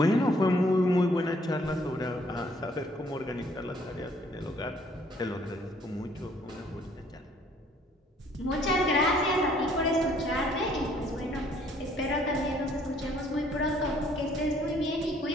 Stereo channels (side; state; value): both; normal; correlation 0.62